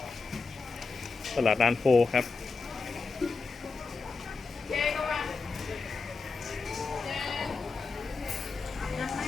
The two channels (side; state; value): right; quieter; 4.4 dB